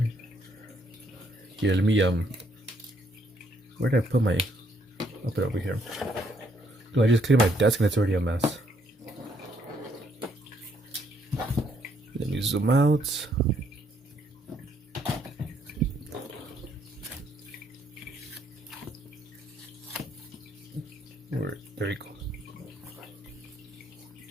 Here, let me where did I put my? I'll put it over here. Do I just clear my desk and it's already a mess? Let me zoom out. There you go.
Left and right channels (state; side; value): normal; both; correlation 0.70